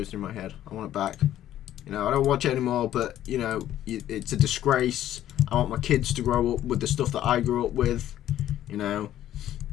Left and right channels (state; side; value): quieter; right; 12.3 dB